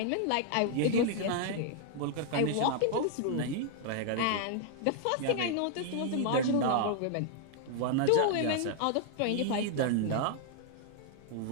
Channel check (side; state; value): both; different; correlation 0.00